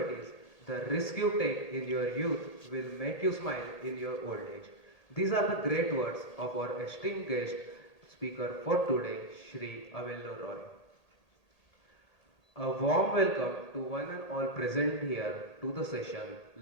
is the risk you take in your youth will make you smile in your old age. These are the great words of our esteemed guest speaker for today, Shri Avelo Roy. A warm welcome to one and all present here to the session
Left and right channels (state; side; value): late; right; 1.8 ms